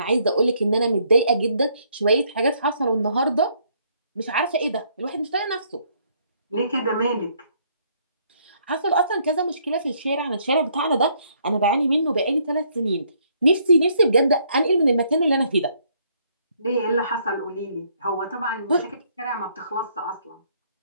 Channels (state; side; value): inverted; both; correlation -0.68